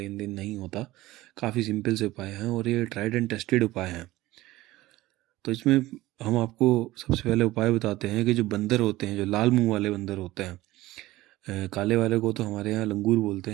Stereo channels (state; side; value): quieter; left; 17.6 dB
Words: देन नहीं होता, काफ़ी सिंपल से उपाय हैं और ये ट्राइड एंड टेस्टेड उपाय हैं। तो इसमें हम आपको सबसे पहले उपाय बताते हैं कि जो बंदर होते हैं, जो लाल मुंह वाले बंदर होते हैं, काले वाले को तो हमारे यहाँ लंगूर बोलते